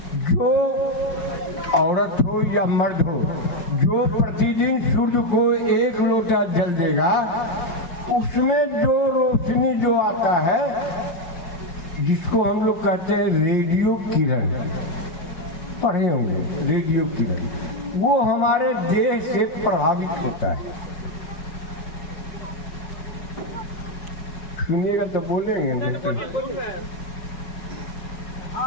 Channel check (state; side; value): late; right; 5.6 ms